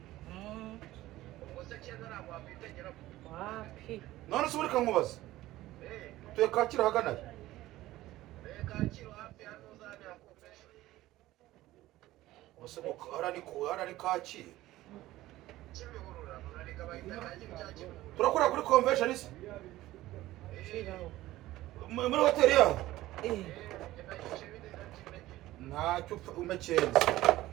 wapi None se ureka nkubaza. Tuye Kacyiru ahagana he? Ose harani Kacyiru. Turakora kuri convention se? shiraho Muri hoteli yaho? eh Ntacyo umekenze.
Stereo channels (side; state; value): left; quieter; 16.2 dB